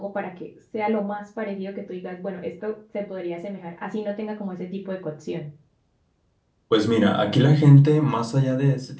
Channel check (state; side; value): identical; both; correlation 1.00